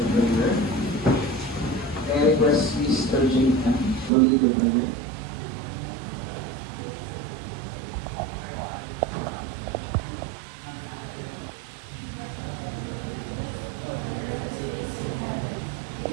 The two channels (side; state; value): left; drops out; at 4.1 s